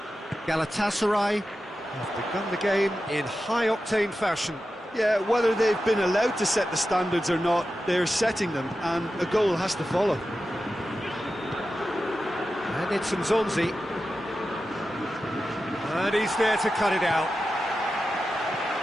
Galatasaray have begun the game in high-octane fashion. Yeah, whether they've been allowed to set the standards or not, they're setting them, and a goal has to follow. And it's Zonzi. And he's there to cut it out.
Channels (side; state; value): both; normal; correlation 0.92